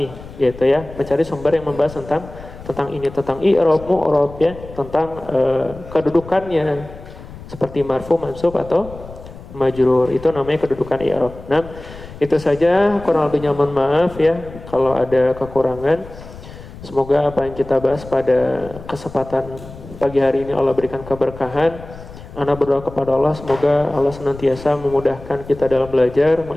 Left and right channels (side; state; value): left; noise; rumble, 16 dB below the sound